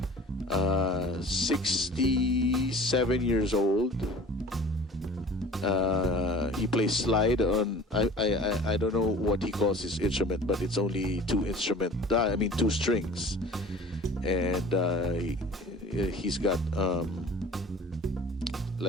67 years old. He plays slide on. I don't know what he calls his instrument, but it's only 2 strings, and he's got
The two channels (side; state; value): both; normal; correlation 0.44